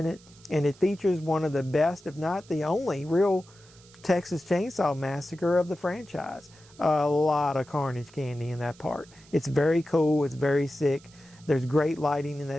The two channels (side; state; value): right; noise; hiss, 25 dB below the sound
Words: it, and it features one of the best, if not the only, real Texas Chainsaw Massacre of the franchise. A lot of carnage candy in that part. It's very cool. It's very sick. There's great lighting in